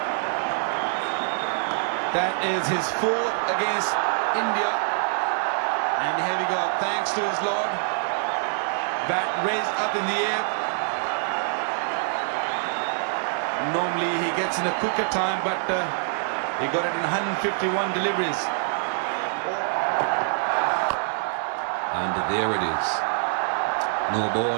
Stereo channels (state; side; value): silent; left; digital silence